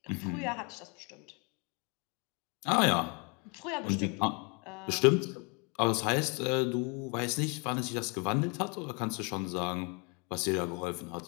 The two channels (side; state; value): right; quieter; 33.5 dB